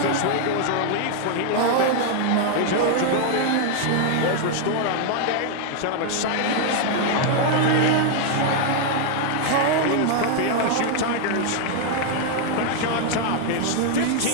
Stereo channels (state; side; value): different; both; correlation 0.00